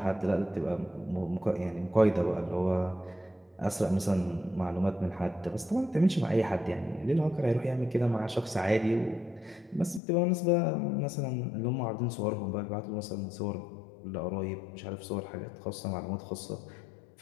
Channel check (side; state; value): right; drops out; at 10.0 s